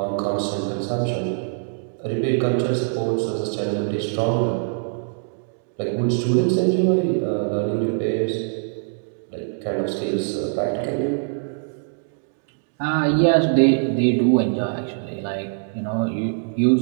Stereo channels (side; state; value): left; silent; digital silence